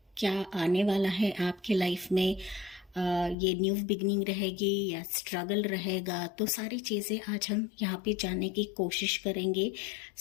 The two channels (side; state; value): right; drops out; at 3.4 s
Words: क्या आने वाला है आपके लाइफ में, ये न्यू बिगनिंग रहेगी या स्ट्रगल रहेगा, तो सारी चीज़ें आज हम यहाँ पे जानने की कोशिश करेंगे।